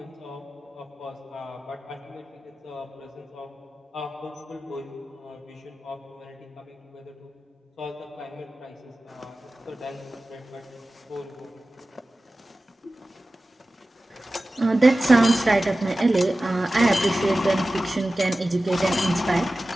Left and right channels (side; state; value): both; normal; correlation 0.96